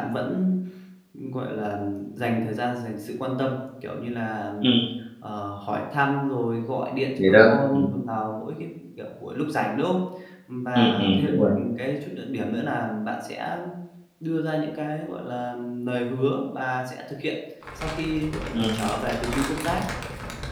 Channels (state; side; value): identical; both; correlation 1.00